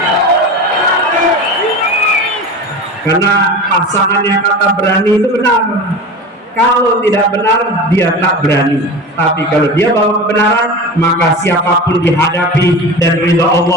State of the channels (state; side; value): normal; both; correlation 0.30